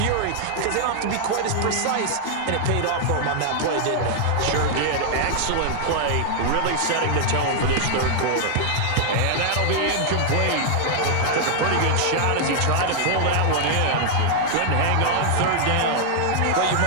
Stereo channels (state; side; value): different; both; correlation 0.00